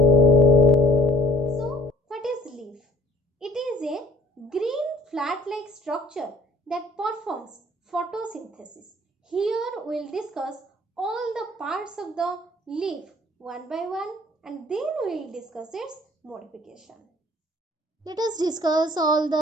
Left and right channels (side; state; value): both; normal; correlation 0.56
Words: So, what is leaf? It is a green flat-like structure that performs photosynthesis. Here we will discuss all the parts of the leaf one by one and then we will discuss its modification. Let us discuss all